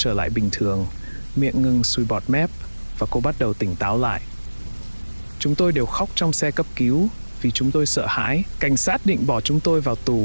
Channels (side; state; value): both; inverted; correlation -1.00